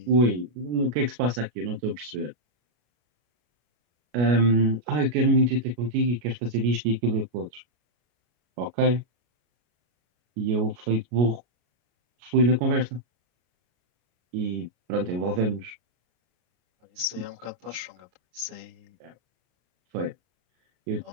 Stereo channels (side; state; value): left; late; 33 ms